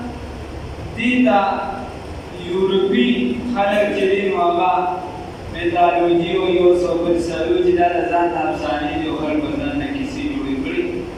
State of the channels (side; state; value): both; identical; correlation 1.00